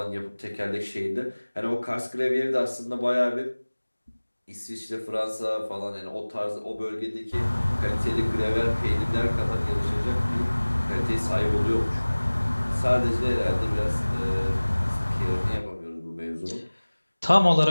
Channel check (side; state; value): both; inverted; correlation -1.00